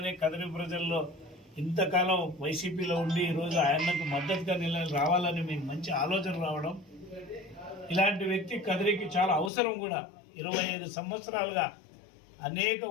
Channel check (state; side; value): drops out; right; at 9.5 s